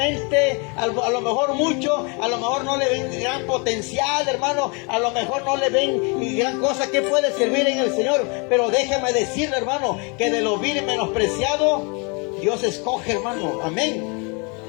a lo mejor mucho, a lo mejor no le ven gran potencial, hermano, a lo mejor no le ven gran cosa que puede servir en el Señor, pero déjame decirle, hermano, que de lo vil y menospreciado, Dios escoge, hermano, amén.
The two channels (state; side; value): quieter; right; 32.8 dB